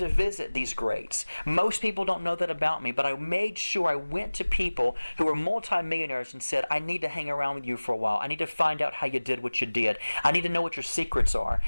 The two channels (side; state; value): both; inverted; correlation -1.00